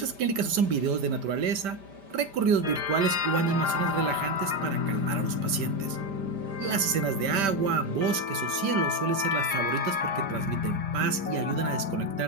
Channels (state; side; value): late; left; 5.1 ms